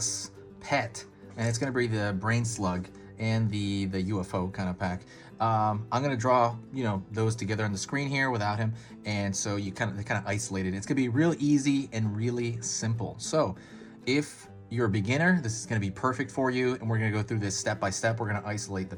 pet, and it's going to be the Brainslug and the UFO kind of pack. I'm going to draw, those together on the screen here without him, and so they kind of isolated. It's going to be real easy and really simple. So, if you're a beginner, this is going to be perfect for you, and we're going to go through this step by step. We're going to isolate the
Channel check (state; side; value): identical; both; correlation 1.00